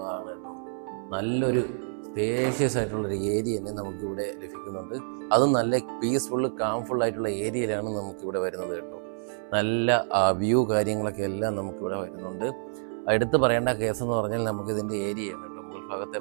കേട്ടോ. നല്ലൊരു സ്പേഷ്യസ് ആയിട്ടുള്ളൊരു ഏരിയ തന്നെ നമുക്കിവിടെ ലഭിക്കുന്നുണ്ട്. അതും നല്ല പീസ്ഫുള്ള് കാംഫുള്ളായിട്ടുള്ള ഏരിയയിലാണ് നമുക്കിവിടെ വരുന്നത് കേട്ടോ. നല്ല വ്യൂ കാര്യങ്ങളൊക്കെ എല്ലാം നമുക്കിവിടെ വരുന്നുണ്ട്. എടുത്ത് പറയേണ്ട കേസെന്ന് പറഞ്ഞാൽ നമുക്കിതിൻ്റെ ഏരിയയാണ് കേട്ടോ. മുകൾ ഭാഗത്തെ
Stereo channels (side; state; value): left; silent; 59 dB below the other